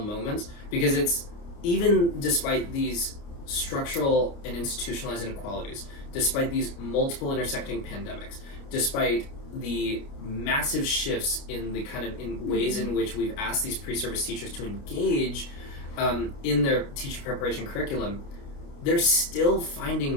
moments, because it's, even despite these structural and institutionalized inequalities, despite these multiple intersecting pandemics, despite the massive shifts in the kind of in ways in which we've asked these pre-service teachers to engage in their teacher preparation curriculum, they're still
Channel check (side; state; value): right; late; 29 ms